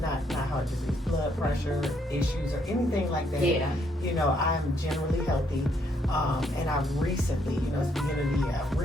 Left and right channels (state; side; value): normal; both; correlation 0.71